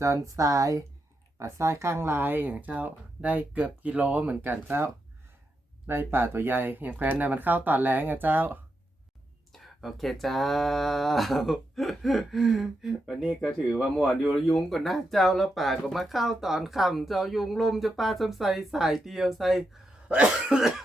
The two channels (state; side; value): normal; both; correlation 0.85